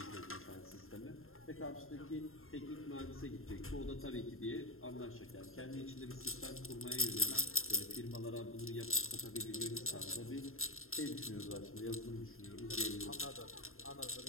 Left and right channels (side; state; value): right; late; 0.61 ms